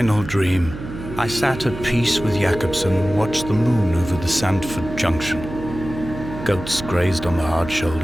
dream, I sat at peace with Jakobsen and watched the moon over the Sandford Junction. Goats grazed on the hard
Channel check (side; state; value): right; noise; hum, 11 dB below the sound